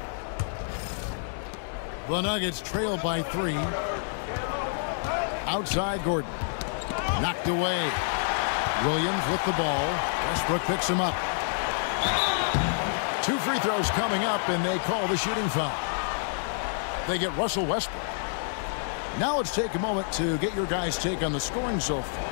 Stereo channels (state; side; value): silent; right; 59 dB below the other